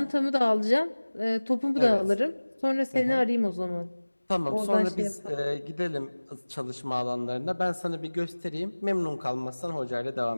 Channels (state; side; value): inverted; both; correlation -1.00